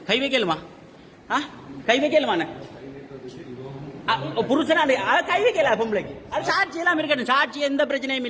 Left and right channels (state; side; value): identical; both; correlation 1.00